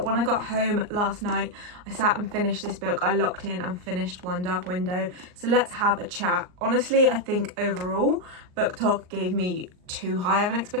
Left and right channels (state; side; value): late; left; 39 ms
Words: when I got home last night, I sat and finished this book. I locked in and finished One Dark Window. So let's have a chat. Honestly, I think overall, Book Talk gave me too high of an